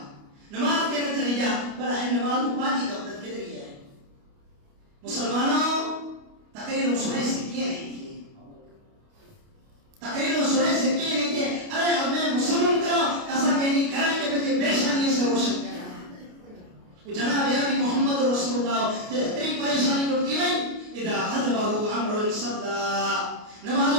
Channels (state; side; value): late; left; 29 ms